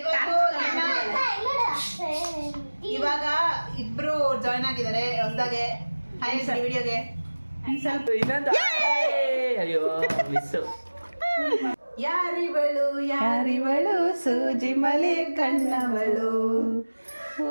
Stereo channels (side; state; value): both; inverted; correlation -1.00